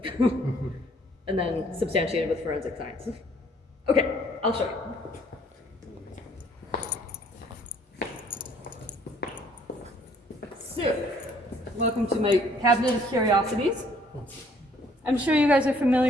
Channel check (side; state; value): both; normal; correlation 0.61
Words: And then substantiated with forensic science. Okay, I'll show you. So, welcome to my cabinet of curiosities. I'm sure you guys are